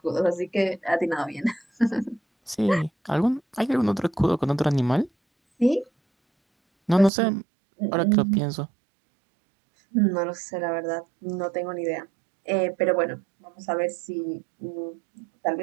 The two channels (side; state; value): left; drops out; at 7.1 s